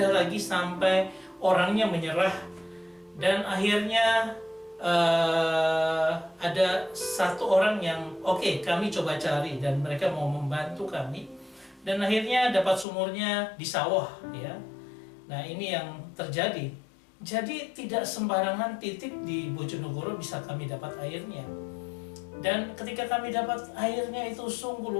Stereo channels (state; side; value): drops out; right; at 12.9 s